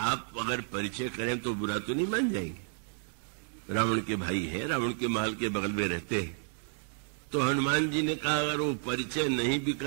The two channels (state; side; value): silent; left; digital silence